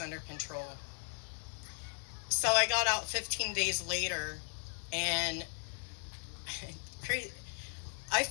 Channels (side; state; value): right; silent; 53 dB below the other